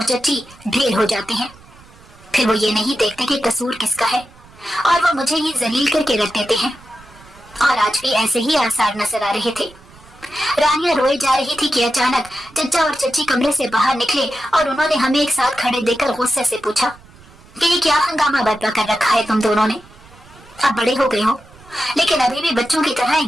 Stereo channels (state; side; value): noise; right; rumble, 24 dB below the sound